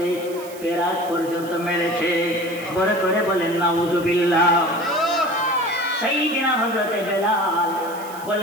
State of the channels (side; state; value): right; noise; hiss, 18 dB below the sound